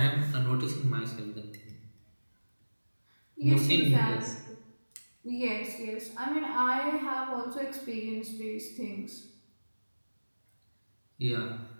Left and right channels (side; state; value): both; inverted; correlation -1.00